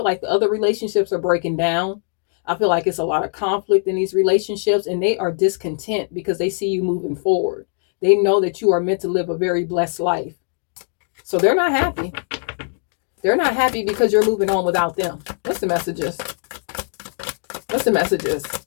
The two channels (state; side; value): silent; right; digital silence